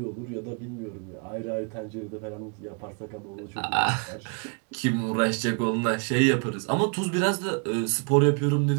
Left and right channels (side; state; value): left; quieter; 37.6 dB